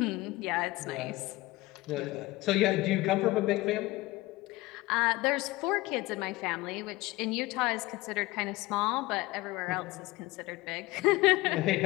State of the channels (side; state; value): right; quieter; 19.6 dB